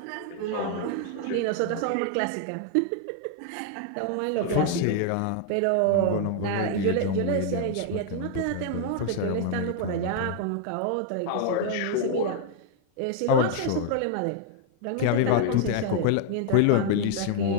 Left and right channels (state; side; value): different; both; correlation 0.00